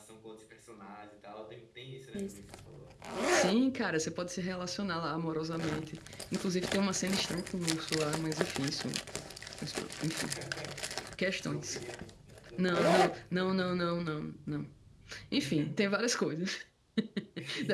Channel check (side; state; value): both; identical; correlation 1.00